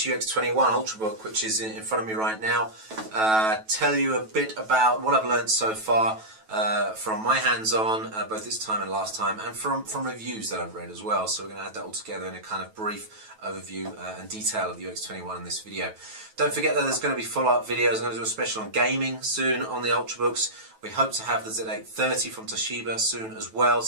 UX21 Ultrabook, which is in front of me right now. Tell you a bit about what I've learned so far from my hands-on, both this time and last time, and from reviews that I've read as well. So we're going to add that all together in a kind of brief overview and detail of the UX21 in this video. Don't forget that there's going to be follow-up videos. I'm going to do a special on gaming soon on the Ultrabooks. We hope to have the Z830 from Toshiba soon as well,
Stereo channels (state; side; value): late; left; 9.2 ms